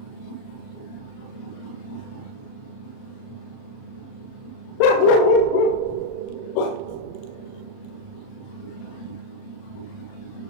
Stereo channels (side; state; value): right; late; 38 ms